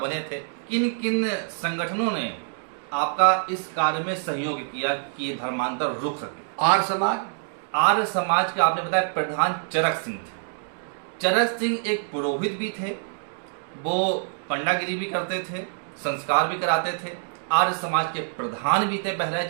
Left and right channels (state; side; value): silent; left; digital silence